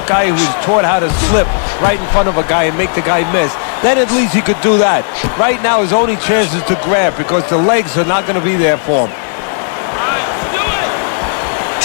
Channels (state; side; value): silent; right; digital silence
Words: guy who was taught how to slip right in front of a guy and make the guy miss. Then at least he could do that. Right now, his only chance is to grab because the legs are not going to be there for him.